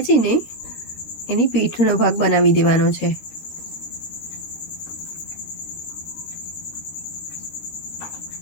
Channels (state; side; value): late; right; 13 ms